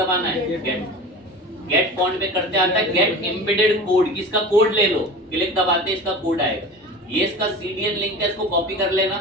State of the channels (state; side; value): normal; both; correlation 0.34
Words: है, गेट फॉन्ट पे करते आता है गेट एम्बेडेड कोड, किसका कोड ले लो, क्लिक दबाते इसका कोड आएगा। ये इसका सीडीएन लिंक है, इसको कॉपी कर लेना,